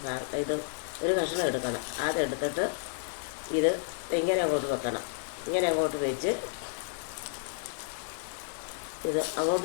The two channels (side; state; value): right; silent; digital silence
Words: കഷ്ണം എടുക്കണം. അതെടുത്തിട്ട് ഇത് ഇങ്ങനെ അങ്ങോട്ട് വെക്കണം. ഇങ്ങനെ അങ്ങോട്ട് വെച്ച് ഇത്